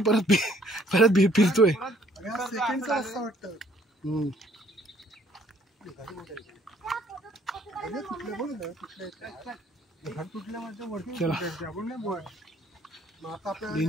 परत परत फिरतोय.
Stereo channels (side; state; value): both; normal; correlation 0.61